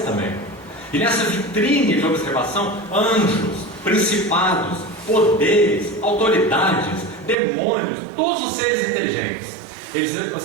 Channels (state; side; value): drops out; left; at 7.4 s